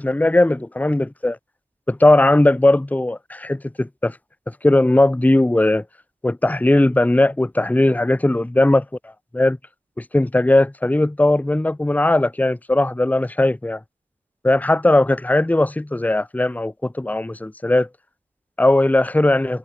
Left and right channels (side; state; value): both; normal; correlation 0.96